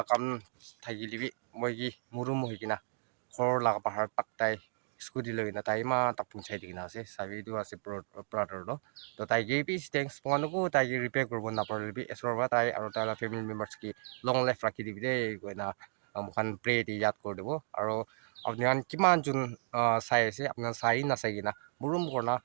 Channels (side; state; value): left; silent; digital silence